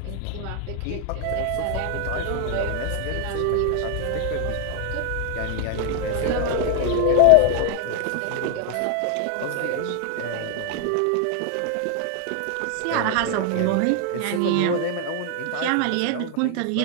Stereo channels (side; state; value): both; different; correlation 0.00